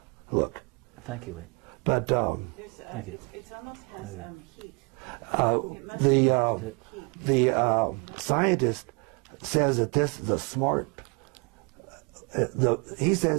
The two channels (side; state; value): left; quieter; 32.9 dB